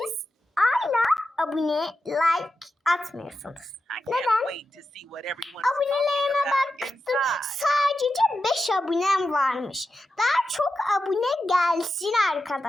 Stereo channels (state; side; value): normal; both; correlation 0.90